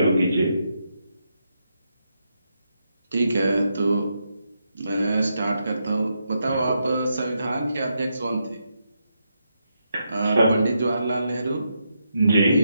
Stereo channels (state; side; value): inverted; both; correlation -0.82